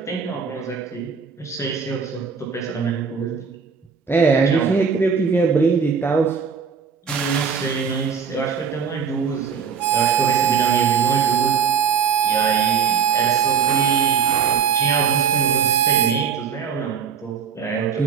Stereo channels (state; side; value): quieter; left; 6.6 dB